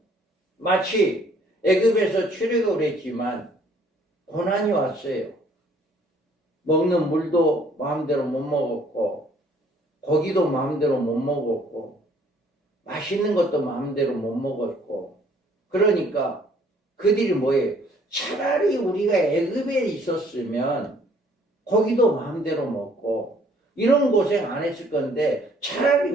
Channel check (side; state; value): both; normal; correlation 0.61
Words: 마치 애굽에서 출애굽을 했지만 고난이 왔어요. 먹는 물도 마음대로 못 먹었고, 고기도 마음대로 못 먹었고, 맛있는 것도 마음대로 못 먹었고, 그러니까 그들이 뭐예요? 차라리 우리가 애굽에 있었으면 고기도 마음대로 먹고 이런 고생 안 했을 건데, 차라리